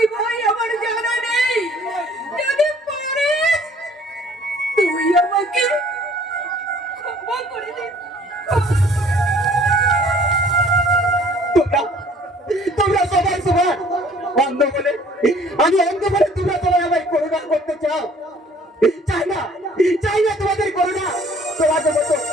ভাই, আমার জানা নেই। যদি পারিস তুই আমাকে ক্ষমা করে দে। তোমরা তোমরা সবাই সবার অন্ধ বলে, আমি অন্ধ বলে তোমরা সবাই আমায় করুণা করতে চাও। চাই না তোমাদের করুণা।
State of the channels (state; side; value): normal; both; correlation 0.55